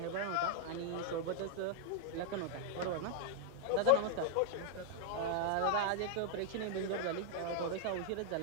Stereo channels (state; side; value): different; both; correlation -0.01